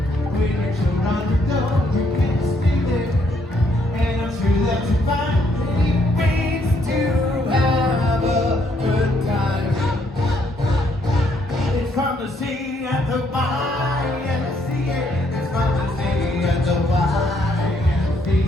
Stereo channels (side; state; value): both; normal; correlation 0.71